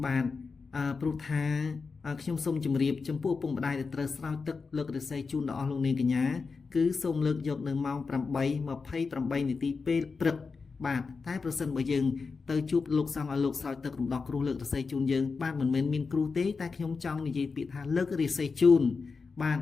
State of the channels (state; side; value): quieter; right; 4.7 dB